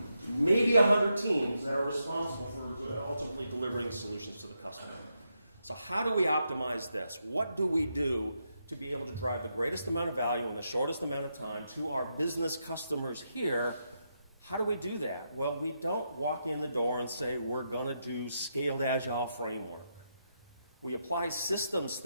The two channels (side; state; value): both; inverted; correlation -0.83